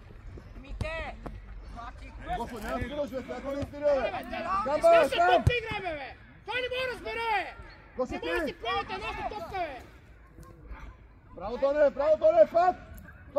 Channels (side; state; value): both; identical; correlation 1.00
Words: Господи, няма свирил, човек, ако не е свирил, бе! Камба, Ще там! топка игра, бе! Той не може да разбере, бе! Господи! Не може да си правите едната топка, бе! Браво, Тоне,